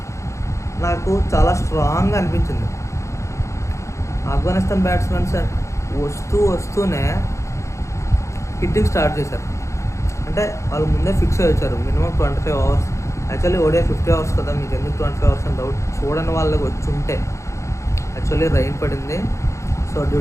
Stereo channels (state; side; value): late; right; 0.14 ms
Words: నాకు చాలా స్ట్రాంగ్గా అనిపించింది. ఆఫ్ఘనిస్తాన్ బ్యాట్స్మెన్స్ వస్తూనే హిట్టింగ్ స్టార్ట్ చేశారు. అంటే వాళ్ళు ముందే ఫిక్స్ అయ్యి వచ్చారు మినిమం 25 అవర్స్. యాక్చువల్లీ ఓడే 50 అవర్స్ కదా, మీకు ఎందుకు 25 అవర్స్ అని డౌట్. చూడని వాళ్ళకి వచ్చి ఉంటే యాక్చువల్లీ రైన్ పడింది. సో డ్యూ